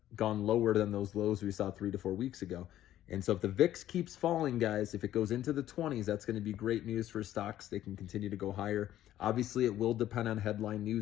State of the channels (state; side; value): quieter; right; 12.8 dB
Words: gone lower than those lows we saw 3 to 4 weeks ago. And so if the VIX keeps falling, guys, if it goes into the 20s, that's going to be great news for stocks. They can continue to go higher. Obviously, it will depend on headline